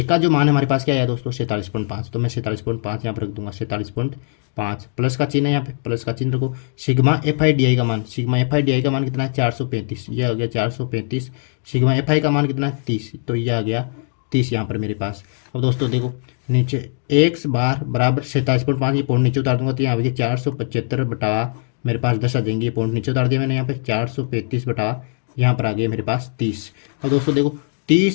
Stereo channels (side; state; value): right; silent; 65 dB below the other